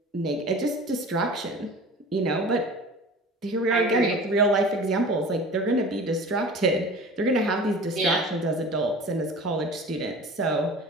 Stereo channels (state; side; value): normal; both; correlation 0.40